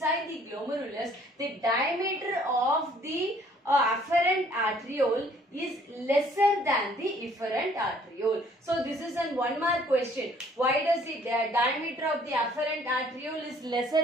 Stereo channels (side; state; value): both; normal; correlation 0.59